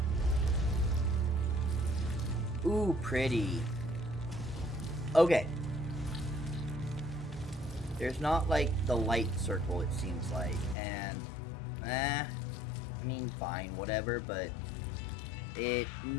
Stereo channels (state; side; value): drops out; right; at 10.8 s